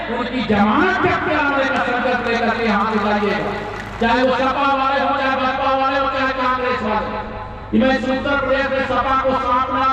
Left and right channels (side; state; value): both; identical; correlation 1.00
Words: उनकी जमानत जब्त कराने का संकल्प लेकर के यहाँ से जाइएगा, चाहे वो सपा वाले हो, चाहे बसपा वाले हो, चाहे कांग्रेस वाले। मैं उत्तर प्रदेश में सपा को